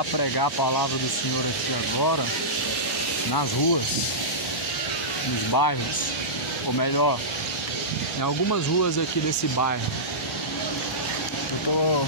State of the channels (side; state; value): both; normal; correlation -0.16